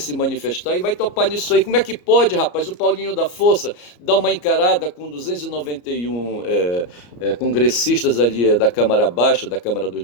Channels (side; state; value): right; late; 34 ms